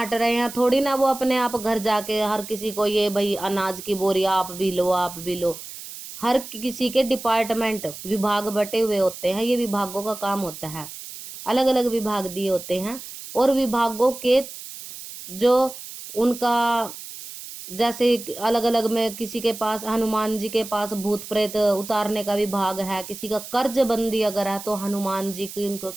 रहे हैं, थोड़ी ना वो अपने आप घर जाके हर किसी को ये भाई अनाज की बोरी आप भी लो, आप भी लो। हर किसी के डिपार्टमेंट, विभाग बटे हुए होते हैं, ये विभागों का काम होता है, अलग अलग विभाग दिए होते हैं। और विभागों के जो उनका, जैसे अलग अलग में किसी के पास, हनुमान जी के पास भूत प्रेत उतारने का विभाग है, किसी का कर्ज बंदी अगर है तो हनुमान जी की उनको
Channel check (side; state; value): right; noise; hiss, 12 dB below the sound